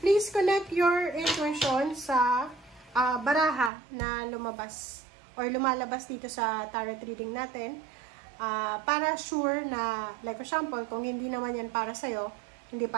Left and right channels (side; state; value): left; drops out; at 3.7 s